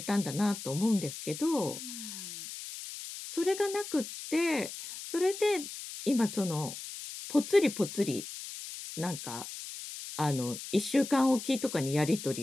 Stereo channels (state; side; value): noise; left; hiss, 10 dB below the sound